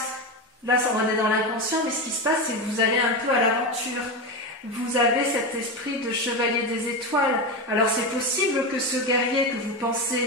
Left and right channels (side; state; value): both; normal; correlation 0.17